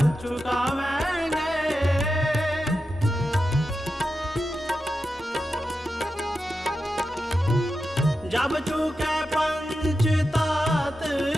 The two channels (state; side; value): normal; both; correlation 0.90